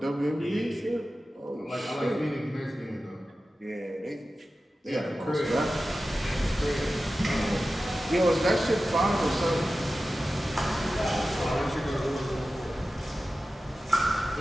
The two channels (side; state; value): both; normal; correlation 0.94